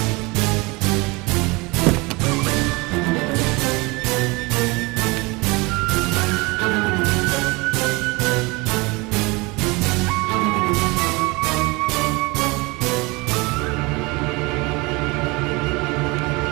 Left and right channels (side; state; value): left; quieter; 25.3 dB